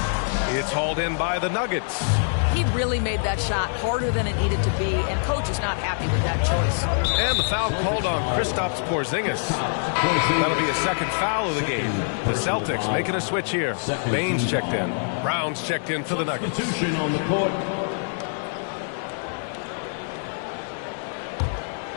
It's hauled in by the Nuggets. He really made that shot harder than it needed to be, and coach is not happy with that choice. And the foul called on Kristaps Porzingis. That'll be a second foul of the game. The Celtics making a switch here. Baines checked in. Brown's checked in for the Nuggets. Substitution on the court.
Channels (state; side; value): silent; right; digital silence